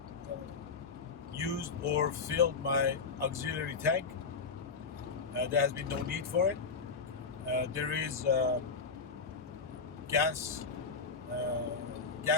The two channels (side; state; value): right; quieter; 5.0 dB